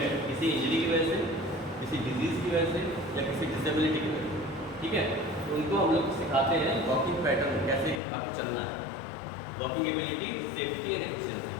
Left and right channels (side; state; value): right; drops out; at 8.0 s